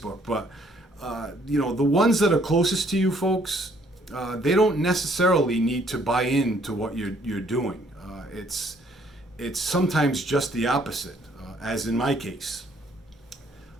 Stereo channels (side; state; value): both; normal; correlation 0.64